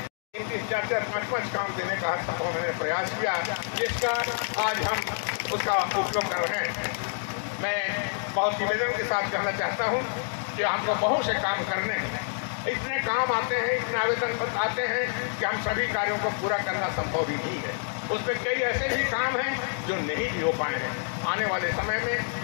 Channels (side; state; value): right; silent; digital silence